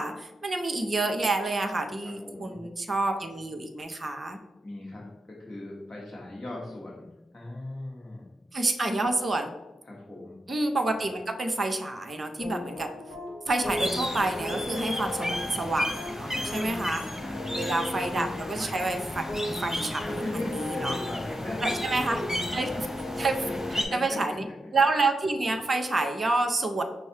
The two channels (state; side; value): normal; both; correlation 0.87